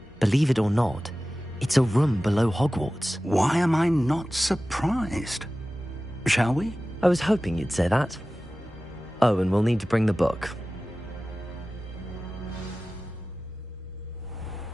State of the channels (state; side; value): normal; both; correlation 0.96